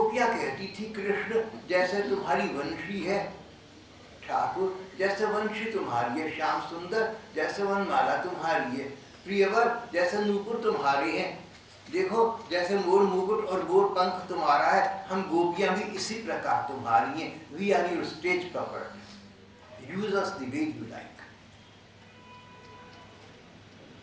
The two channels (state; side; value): identical; both; correlation 1.00